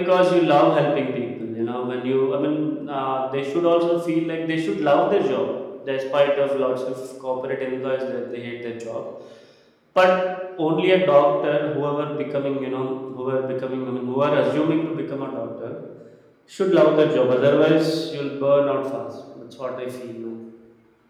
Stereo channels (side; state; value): both; identical; correlation 1.00